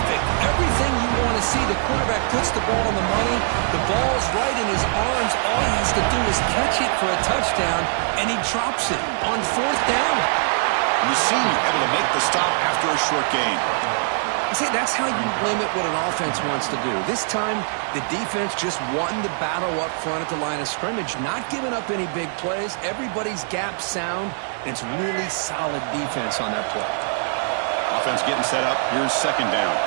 Everything you want to see. The quarterback puts the ball on the money. The ball's right in his arms. All he has to do is catch it for a touchdown, and he drops it on 4th down. And the senior able to make the stop after a short gain. See, that's how you limit what an offense wants to do. This time, the defense just won the battle up front at the line of scrimmage, not giving up any big plays. Everybody's gap sound, and it's really solid defense on that play. Offense getting set up. Here's 2nd down.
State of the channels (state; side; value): silent; left; 64 dB below the other